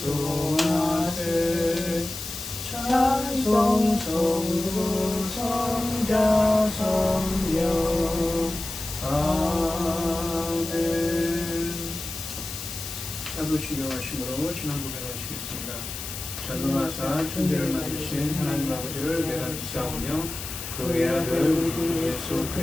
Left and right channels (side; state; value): left; noise; hiss, 8 dB below the sound